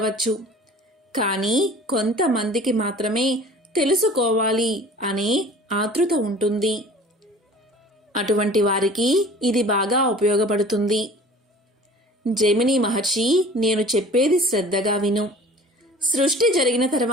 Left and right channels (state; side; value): normal; both; correlation 0.45